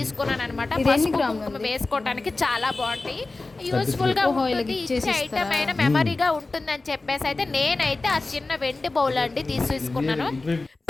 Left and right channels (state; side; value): quieter; right; 3.4 dB